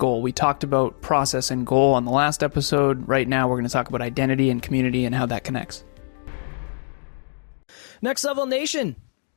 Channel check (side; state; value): right; silent; 63 dB below the other